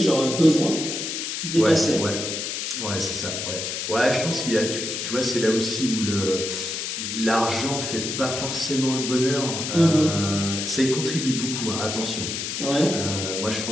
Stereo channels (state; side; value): noise; left; hiss, 4 dB below the sound